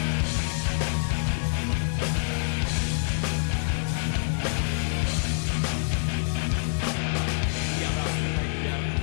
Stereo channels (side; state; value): right; silent; digital silence